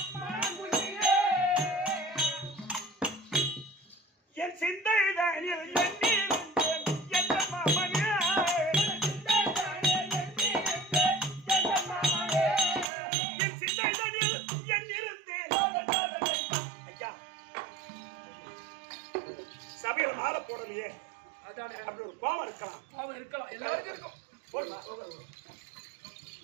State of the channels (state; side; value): drops out; left; at 12.9 s